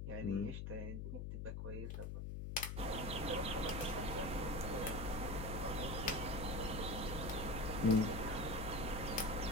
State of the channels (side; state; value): left; noise; hum, 4 dB below the sound